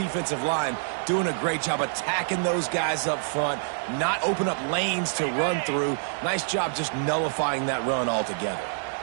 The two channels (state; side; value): silent; left; digital silence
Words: line doing a great job attacking those guys up front, not open up lanes to run through. Nice job just nullifying that run altogether.